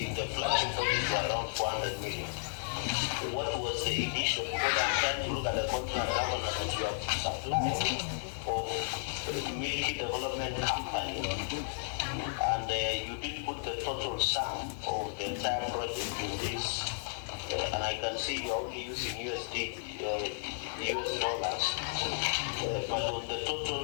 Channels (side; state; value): right; silent; digital silence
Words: in the flagship project were around 400 million. What was the initial? Because I'm trying to look at the contract governor that you have supplied of Milky Development Company, and you didn't put the total sum of the entire project in this. And I can see you're only using US dollars, but on the